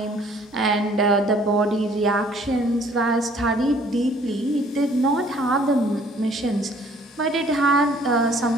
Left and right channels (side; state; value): both; normal; correlation 0.58